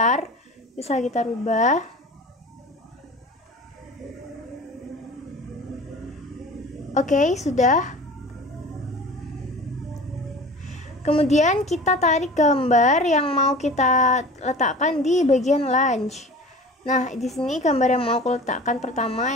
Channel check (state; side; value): normal; both; correlation 0.39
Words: bisa kita rubah. Oke, sudah. Kemudian kita tarik gambar yang mau kita letakkan di bagian lunch. Nah, di sini gambar yang mau aku letakkan pertama,